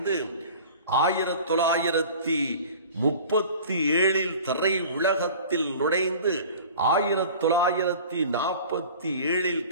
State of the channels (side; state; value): both; inverted; correlation -0.42